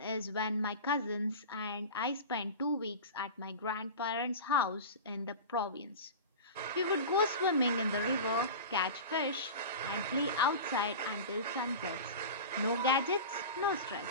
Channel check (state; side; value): inverted; both; correlation -0.30